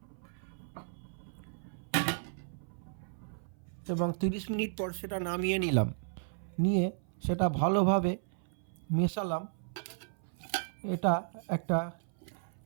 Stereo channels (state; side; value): silent; left; 55 dB below the other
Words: এবং 30 মিনিট পর সেটা নামিয়ে নিলাম। নিয়ে সেটা ভালোভাবে মেশালাম। এটা একটা